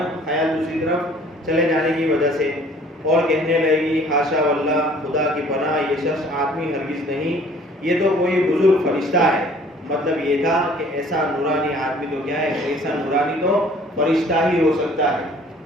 خیال دوسری طرف چلے جانے کی وجہ سے، اور کہنے لگے گی حاشا واللہ، خدا کی پناہ، یہ شخص آدمی ہرگز نہیں، یہ تو کوئی بزرگ فرشتہ ہے۔ مطلب یہ تھا کہ ایسا نورانی آدمی تو کیا ہے، ایسا نورانی تو فرشتہ ہی ہو سکتا ہے۔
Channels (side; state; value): both; normal; correlation 0.54